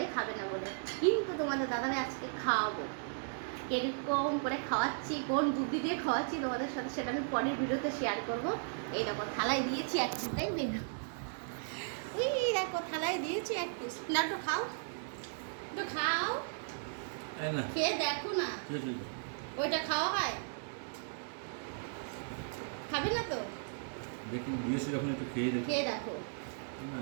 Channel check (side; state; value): left; silent; digital silence